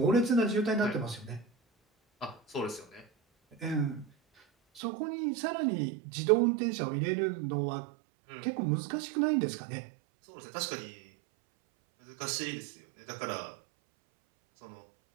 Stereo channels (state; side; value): drops out; left; at 4.8 s